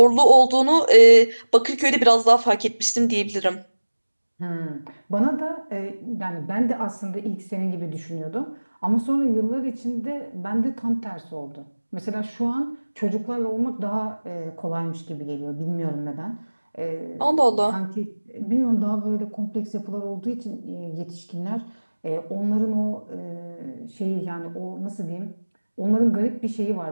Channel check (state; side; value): inverted; both; correlation -1.00